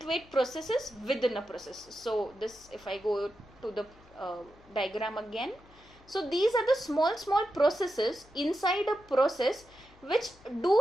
processes within a process. So this, if I go to the diagram again. So these are the small processes inside a process which do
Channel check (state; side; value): noise; left; hum, 26 dB below the sound